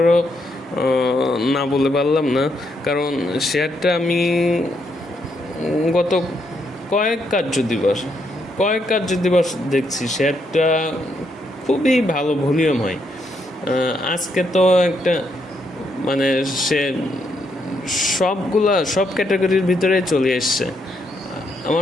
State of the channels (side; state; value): both; normal; correlation 0.76